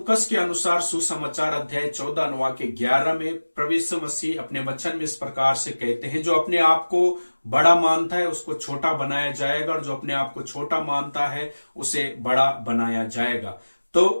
के अनुसार सुसमाचार अध्याय 14 अनुवाक के 11 में प्रभु यीशु मसीह अपने वचन में इस प्रकार से कहते हैं, जो अपने आप को बड़ा मानता है उसको छोटा बनाया जाएगा, और जो अपने आप को छोटा मानता है उसे बड़ा बनाया जाएगा। तो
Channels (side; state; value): both; inverted; correlation -1.00